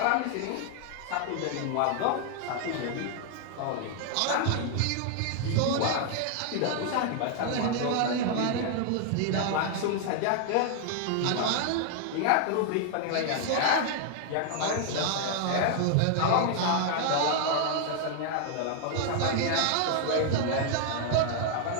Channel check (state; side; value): different; both; correlation 0.00